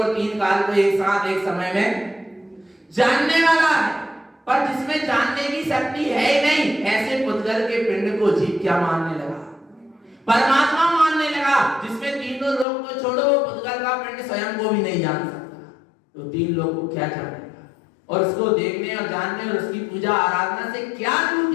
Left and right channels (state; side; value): drops out; right; at 12.7 s